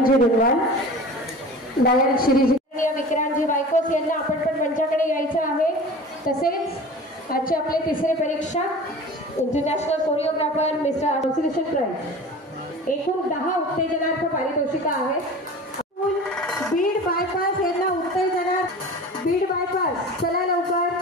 रुनवाल, लायन श्रीजी विक्रांतजी वायकोस यांना आपण पण मंचाकडे यायचं आहे। तसेच आजचे आपले तिसरे परीक्षक international choreographer mister association prize एकूण 10 उत्तेजनार्थ पारितोषिका आहेत। बीड बायपास यांना उत्तेजनार्थ बीड बायपास चला लवकर।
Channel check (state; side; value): normal; both; correlation 0.38